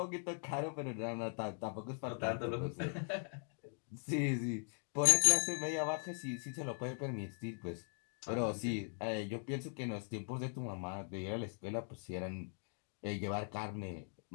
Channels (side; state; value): right; silent; 51 dB below the other